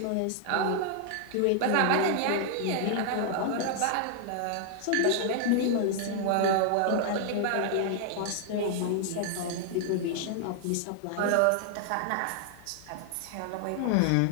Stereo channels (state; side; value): different; both; correlation 0.00